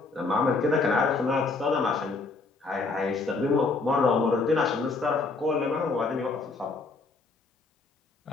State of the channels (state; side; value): quieter; right; 3.9 dB